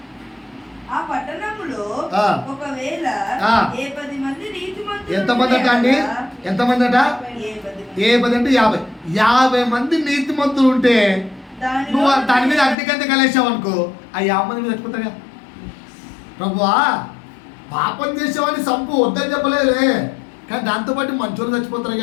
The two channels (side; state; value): right; drops out; at 12.8 s